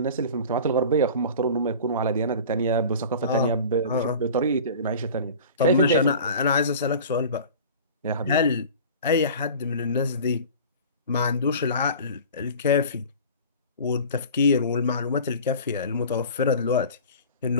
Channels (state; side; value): inverted; both; correlation -0.39